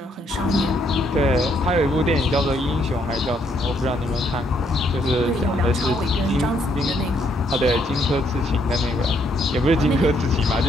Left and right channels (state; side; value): normal; both; correlation 0.71